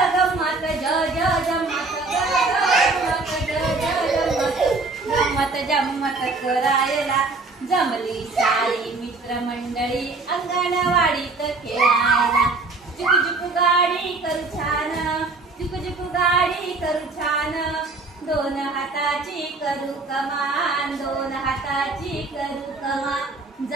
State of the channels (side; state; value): left; quieter; 3.6 dB